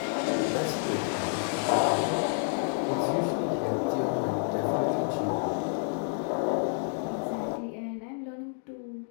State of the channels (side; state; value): right; silent; 58 dB below the other